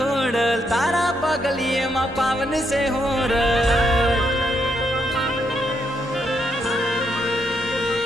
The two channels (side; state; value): both; normal; correlation 0.77